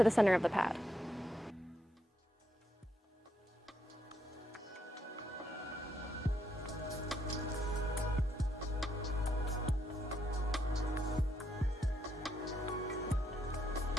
the center of the pad.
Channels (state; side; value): normal; both; correlation 0.78